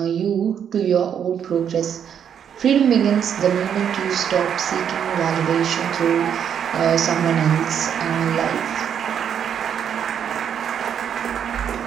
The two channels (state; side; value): quieter; left; 8.4 dB